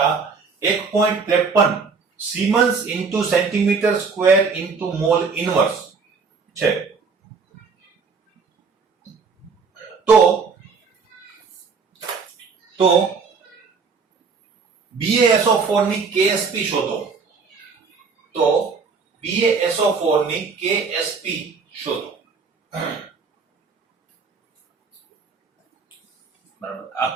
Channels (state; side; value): quieter; left; 5.0 dB